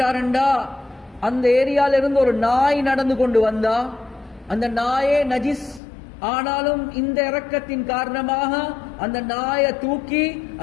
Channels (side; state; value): right; drops out; at 5.8 s